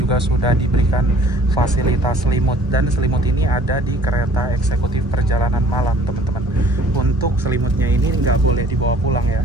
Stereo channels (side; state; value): both; normal; correlation 0.53